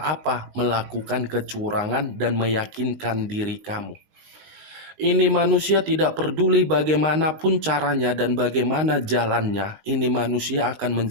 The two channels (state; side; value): late; left; 19 ms